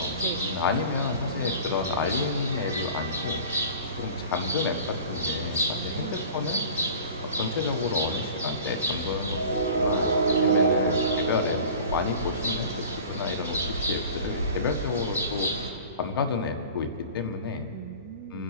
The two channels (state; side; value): inverted; both; correlation -0.41